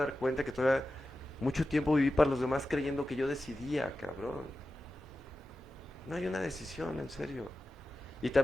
cuenta que todavía mucho tiempo viví para los demás creyendo que yo decidía, cabrón. No hay una decisión, en serio. Y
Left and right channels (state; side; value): normal; both; correlation 0.93